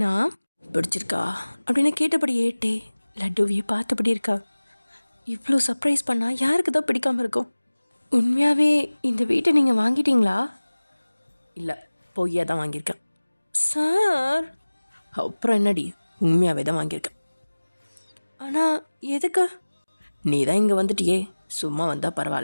பிடிச்சிருக்கா அப்படின்னு கேட்டபடி ஏட்டே லட்டுவியை பார்த்தபடி இருக்கா. இவ்வளோ சர்ப்ரைஸ் பண்ணால் யாருக்கு தான் பிடிக்காமல் இருக்கும்? உண்மையாகவே இந்த வீட்டை நீங்கள் வாங்கிட்டீங்களா? இல்லை, பொய்யா தான் வாங்கியிருக்கேன் சார். அப்புறம் என்னடி, உண்மையாகவே தான் வாங்கியிருக்கேன். ஆனால் எதுக்கு? நீ தான் இங்கே வந்துட்டியே, சும்மா வந்தால்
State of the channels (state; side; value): inverted; both; correlation -1.00